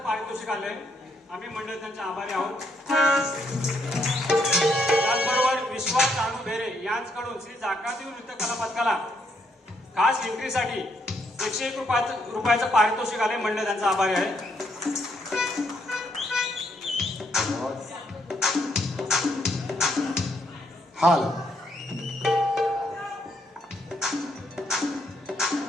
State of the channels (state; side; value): normal; both; correlation 0.74